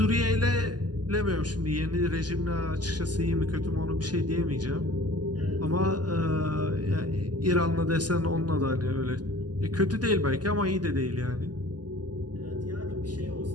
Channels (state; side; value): late; left; 0.70 ms